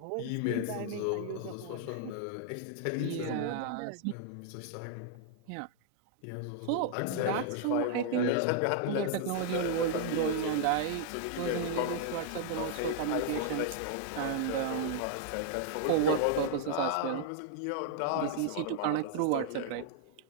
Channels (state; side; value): different; both; correlation -0.01